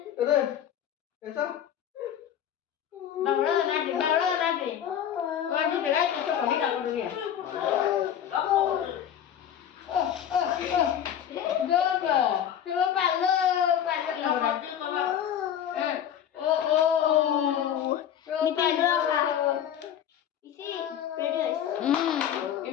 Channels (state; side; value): quieter; right; 9.6 dB